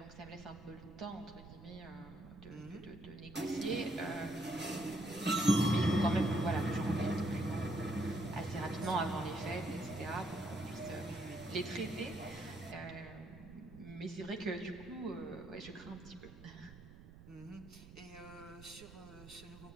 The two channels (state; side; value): noise; right; rumble, 17 dB below the sound